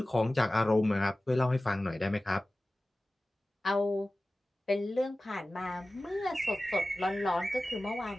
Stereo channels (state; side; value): normal; both; correlation 0.96